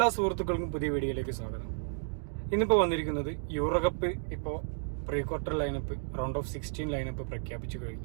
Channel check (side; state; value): left; silent; digital silence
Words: സുഹൃത്തുക്കൾക്കും പുതിയ വീഡിയോയിലേക്ക് സ്വാഗതം. ഇന്നിപ്പോൾ വന്നിരിക്കുന്നത് യൂറോകപ്പ് ഇപ്പോൾ pre quarter lineup round of 16 lineup പ്രഖ്യാപിച്ചു